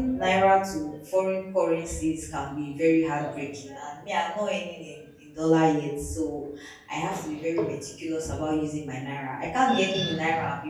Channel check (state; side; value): identical; both; correlation 1.00